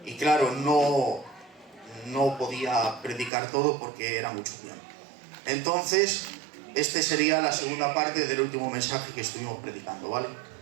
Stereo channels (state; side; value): drops out; left; at 3.3 s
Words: Y claro, no podía predicar todo porque era mucho tiempo. Entonces, este sería la segunda parte del último mensaje que estuvimos predicando, ¿vale?